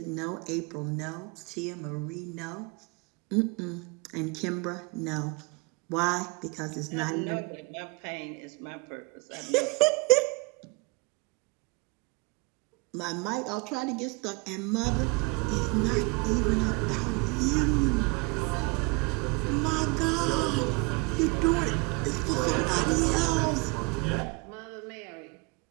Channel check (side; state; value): left; quieter; 28.8 dB